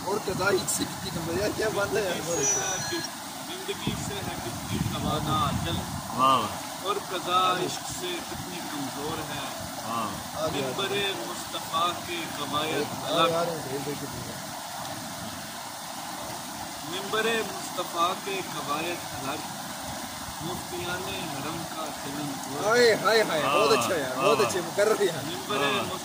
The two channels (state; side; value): identical; both; correlation 1.00